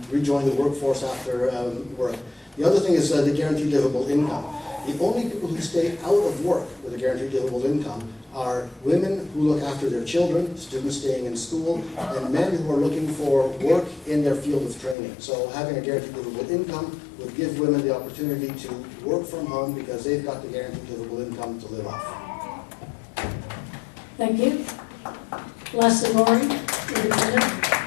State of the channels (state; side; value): drops out; right; at 15.0 s